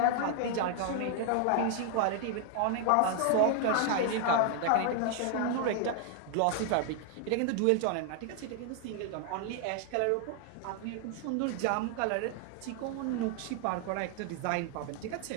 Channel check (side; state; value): both; different; correlation 0.00